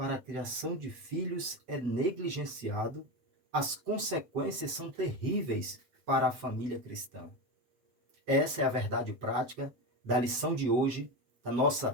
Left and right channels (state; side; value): late; left; 7.8 ms